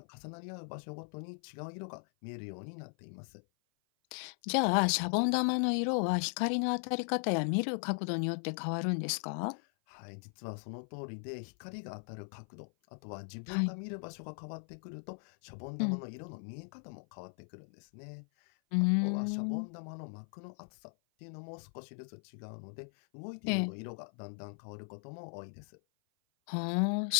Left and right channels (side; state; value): right; silent; 53 dB below the other